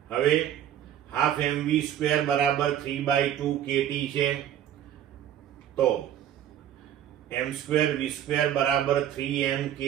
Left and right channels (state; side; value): quieter; left; 10.7 dB